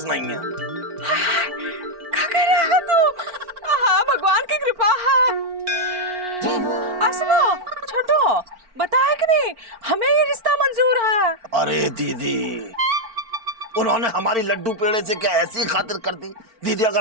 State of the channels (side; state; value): left; late; 4.4 ms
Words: नहीं है। क्या कह रहा है तू? हाँ भगवान की कृपा है। सुनो छोटू, बताया कि नहीं हमें ये रिश्ता मंजूर है। अरे दीदी उन्होंने हमारी लड्डू पेड़े से क्या ऐसी खातिर कर दी? दीदी